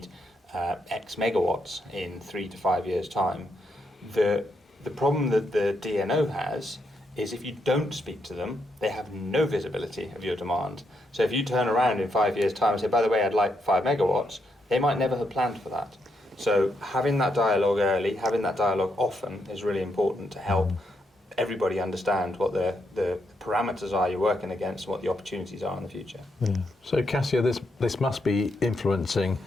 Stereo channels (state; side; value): normal; both; correlation 0.79